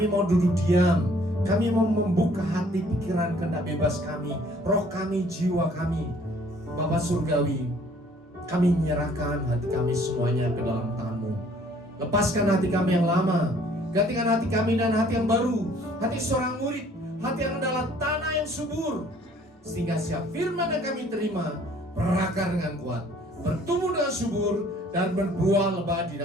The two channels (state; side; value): normal; both; correlation 0.58